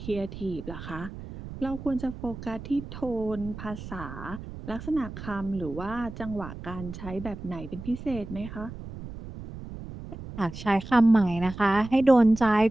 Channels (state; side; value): noise; right; rumble, 12 dB below the sound